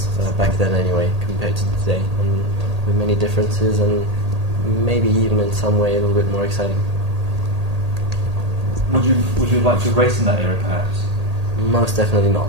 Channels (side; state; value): left; late; 1.8 ms